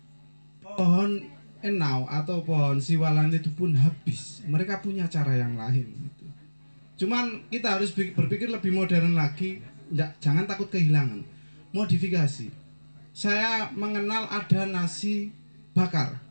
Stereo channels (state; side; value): inverted; both; correlation -1.00